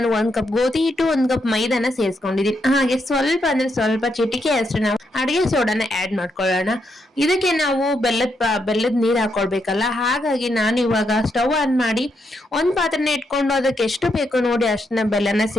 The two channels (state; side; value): normal; both; correlation 0.80